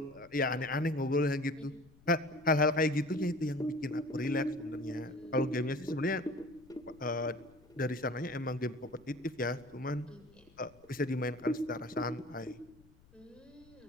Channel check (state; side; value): noise; left; rumble, 27 dB below the sound